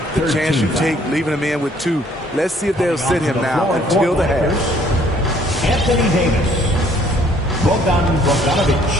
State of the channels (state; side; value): normal; both; correlation 0.61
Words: The chance you take leaving him in with 2. Let's see if they'll sit him now until the half. Anthony Davis. Bogdanovic.